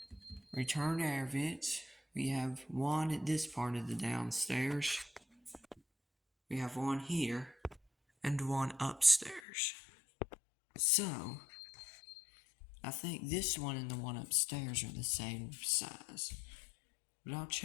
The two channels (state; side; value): drops out; right; at 9.4 s